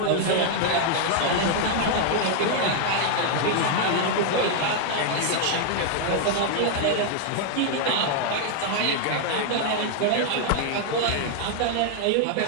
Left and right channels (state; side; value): different; both; correlation 0.00